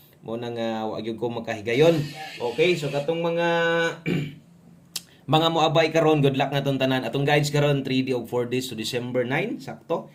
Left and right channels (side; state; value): both; identical; correlation 1.00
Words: mo nang wa gyud ko makahigayon. Okay, so katong mga mga moabay karon, good luck na tong tanan. Atong guides karon 3 og 4 days to December 9, sakto.